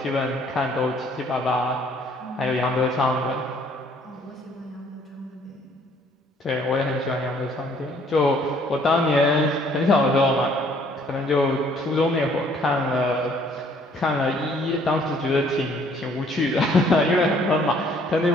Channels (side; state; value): both; normal; correlation 0.61